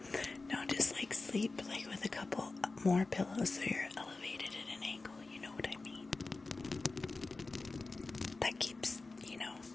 No, just like sleep like with a couple more pillows so you're elevated at an angle. You know what I mean? That keeps,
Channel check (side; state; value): right; quieter; 3.6 dB